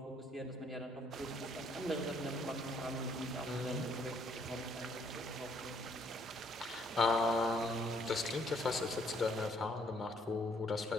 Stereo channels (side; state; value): both; normal; correlation 0.67